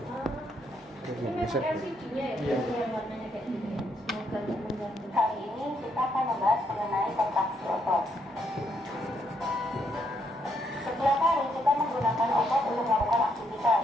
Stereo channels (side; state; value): both; normal; correlation 0.75